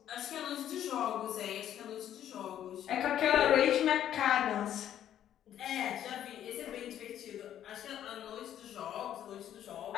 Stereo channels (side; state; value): right; quieter; 10.9 dB